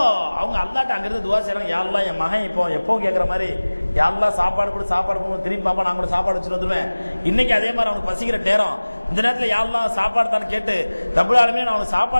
அவங்க அல்லாஹ்ட்ட அங்கிருந்து துவா செய்றாங்க, யா அல்லாஹ் என் மகன் இப்போ எப்போ கேட்குற மாதிரி, யா அல்லாஹ் சாப்பாடு கூட சாப்பாடு போகும், திரும்பி பாப்பா நான் கூட சாப்பாடு வச்சுட்டு வந்துடுவேன். இன்னைக்கு அதே மாதிரி அவனுக்கு பசிக்கிற நேரம், இந்த நேரத்தில் யா அல்லாஹ் சாப்பாடு தான் கேட்டு ரப்புல் ஆலமீன் அவனுக்கு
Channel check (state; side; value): inverted; both; correlation -1.00